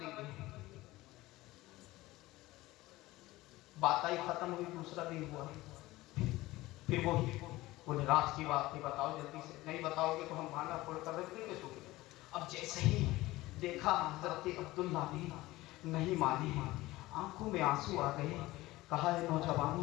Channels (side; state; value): right; quieter; 18.5 dB